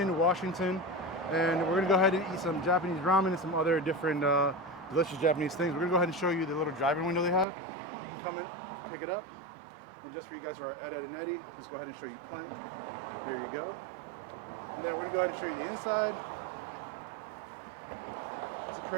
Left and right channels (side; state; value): left; drops out; at 7.5 s